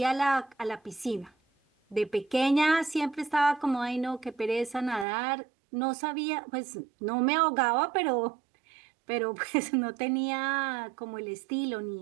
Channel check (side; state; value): left; drops out; at 5.1 s